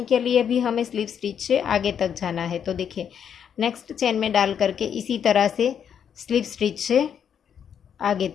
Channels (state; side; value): quieter; right; 8.1 dB